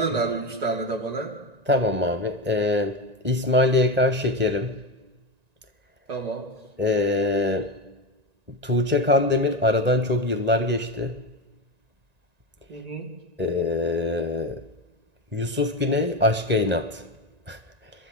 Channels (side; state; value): left; late; 1.9 ms